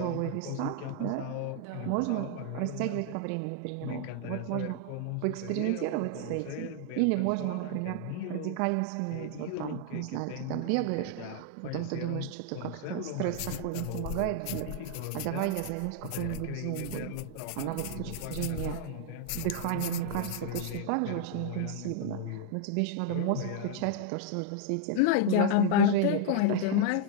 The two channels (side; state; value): both; different; correlation 0.00